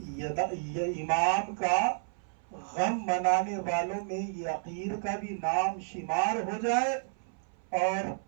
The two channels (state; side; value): silent; left; 56 dB below the other